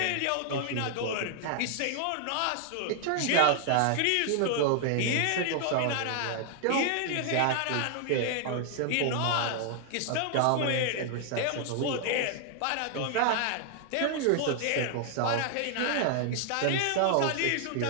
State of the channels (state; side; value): different; both; correlation 0.00